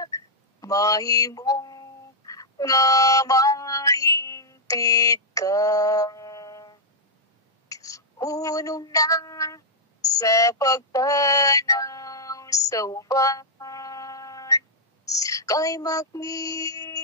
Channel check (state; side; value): normal; both; correlation -0.06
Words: Mahimong nga mahingpit ka. Unong na sa pagtanaw sa uban. Kay